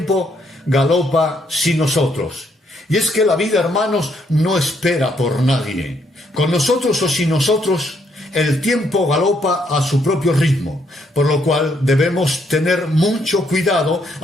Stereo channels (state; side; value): normal; both; correlation 0.72